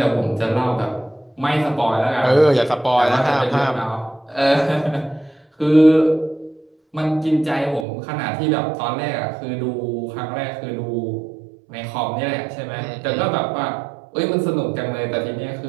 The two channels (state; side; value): drops out; left; at 7.9 s